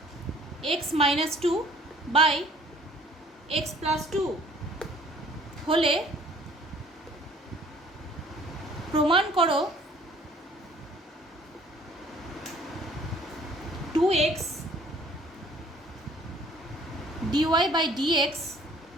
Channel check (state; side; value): normal; both; correlation 0.56